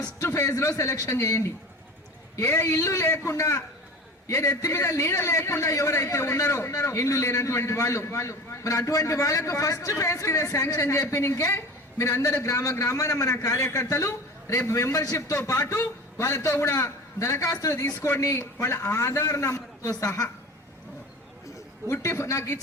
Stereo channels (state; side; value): normal; both; correlation 0.35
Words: ఫేజ్ లో సెలెక్షన్ చేయండి. ఏ ఇల్లు లేకుండా, ఏ నెత్తి మీద నీడ లేకుండా ఎవరైతే ఉన్నారో ఇల్లు లేనటువంటి వాళ్ళు, మరి అటువంటి వాళ్ళకు ఫస్ట్ ఫేజ్ కి శాంక్షన్ చెప్పినకే మీరు అందరూ గ్రామాన మన కార్యకర్తలు రేపు మెంబర్షిప్ తో పాటు వాళ్ళతో కూడా దరఖాస్తులు తీసుకోండి. వాళ్ళ ఆధార్ నంబర్తో సహా నాకు